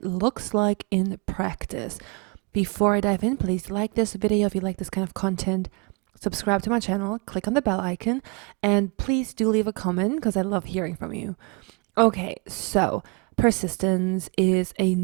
looks like in practice. Before I dive in, please like this video if you like this kind of content. Subscribe to my channel, click on the bell icon, and please do leave a comment because I love hearing from you. Okay, so persistence is a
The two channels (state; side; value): quieter; left; 32.0 dB